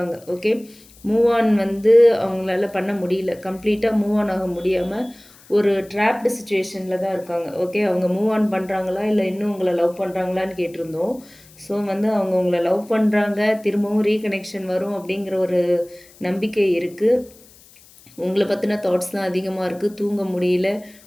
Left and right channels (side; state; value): left; noise; hiss, 25 dB below the sound